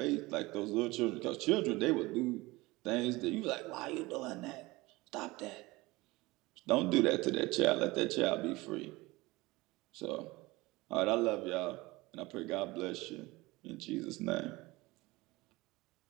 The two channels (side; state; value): left; quieter; 21.3 dB